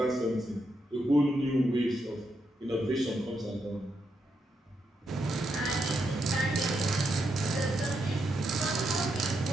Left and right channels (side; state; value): both; normal; correlation 0.82